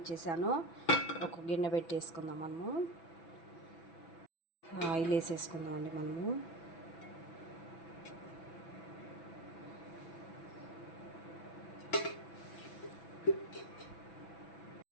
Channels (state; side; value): late; right; 6.0 ms